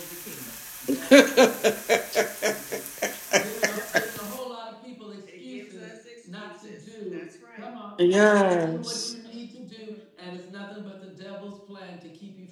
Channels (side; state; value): both; identical; correlation 1.00